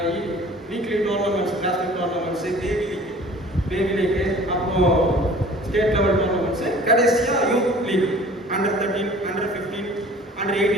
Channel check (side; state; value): both; normal; correlation 0.47